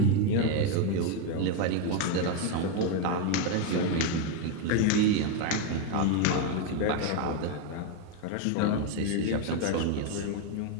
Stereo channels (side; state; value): both; different; correlation 0.02